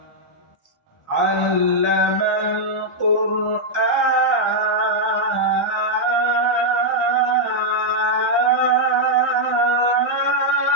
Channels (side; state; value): both; normal; correlation -0.04